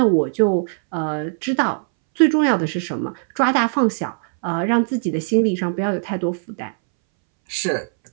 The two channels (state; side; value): silent; left; 64 dB below the other